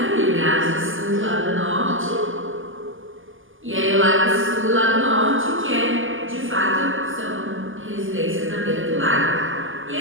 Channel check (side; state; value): left; late; 0.58 ms